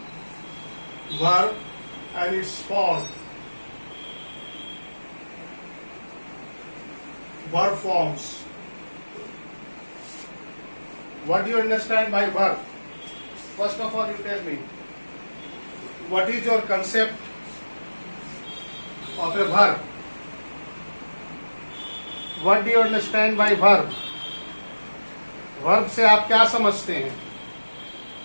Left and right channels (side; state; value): both; inverted; correlation -1.00